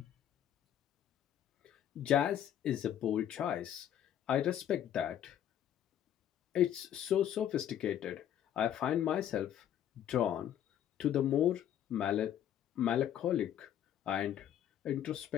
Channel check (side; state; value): right; quieter; 10.4 dB